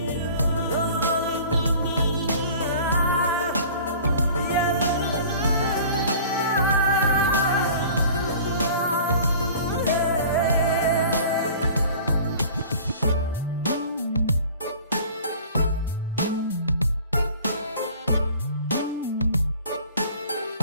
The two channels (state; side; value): inverted; both; correlation -0.45